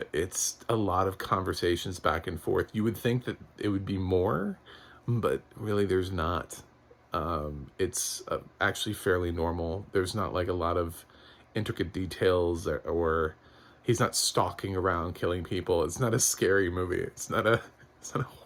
It's a lot of conversations back and forth. You would think that it would be more, but really there's not. It's actually fairly normal. There's not like a lot of intricate details, or he's not stalking around killing people. It's not a scary movie. It's not a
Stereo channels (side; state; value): both; identical; correlation 1.00